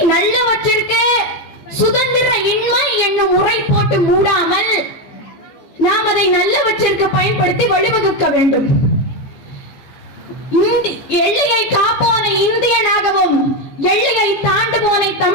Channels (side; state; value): right; late; 15 ms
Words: நல்லவற்றிற்கு சுதந்திர இன்மை என்னும் முறை போட்டு மூடாமல் நாம் அதை நல்லவற்றிற்கு பயன்படுத்தி வழிவகுக்க வேண்டும். எல்லையை காப்போனை இந்தியனாகவும் எல்லையை தாண்டுவோனை